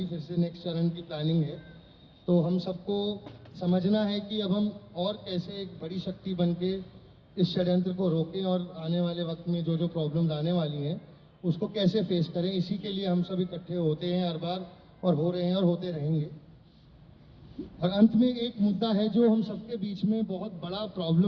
फिर से नेक्स्ट चरण की प्लानिंग है। तो हम सबको समझना है कि अब हम और कैसे एक बड़ी शक्ति बन के इस षड्यंत्र को रोकें और आने वाले वक्त में जो जो प्रॉब्लम्स आने वाली हैं उसको कैसे फेस करें। इसी के लिए हम सब इकट्ठे होते हैं हर बार और हो रहे हैं और होते रहेंगे। और अंत में एक मुद्दा है जो हम सबके बीच में बहुत बड़ा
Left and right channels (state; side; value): identical; both; correlation 1.00